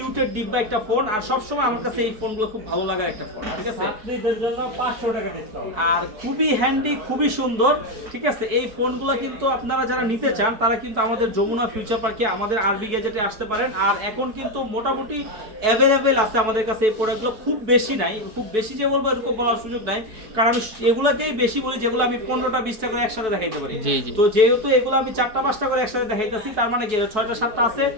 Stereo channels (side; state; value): left; late; 4.6 ms